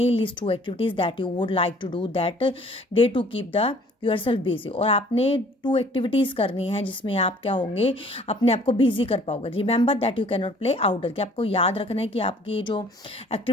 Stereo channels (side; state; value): both; normal; correlation 0.55